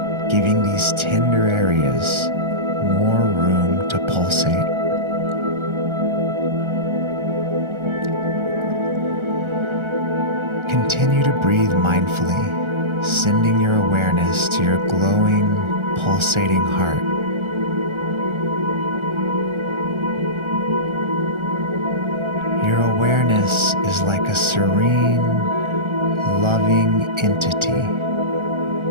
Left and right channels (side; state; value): left; late; 1.3 ms